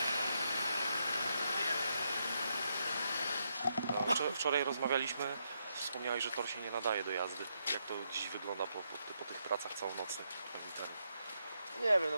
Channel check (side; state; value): both; inverted; correlation -0.79